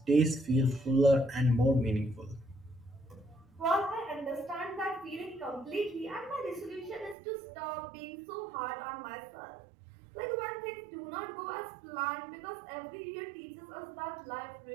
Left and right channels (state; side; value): drops out; left; at 7.2 s